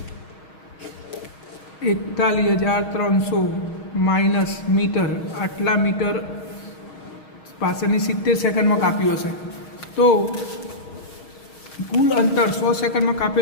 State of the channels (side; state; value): right; late; 6.3 ms